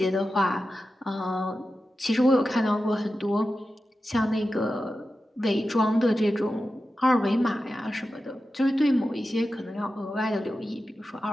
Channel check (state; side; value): normal; both; correlation 0.92